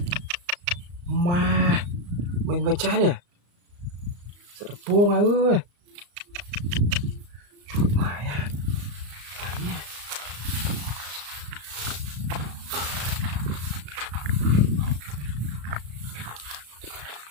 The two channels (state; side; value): late; left; 34 ms